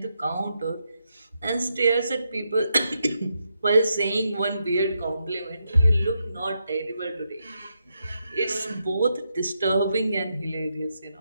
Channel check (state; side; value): inverted; both; correlation -0.82